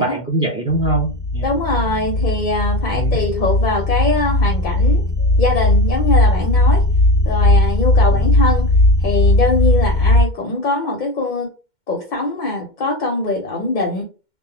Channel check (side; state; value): right; late; 2.1 ms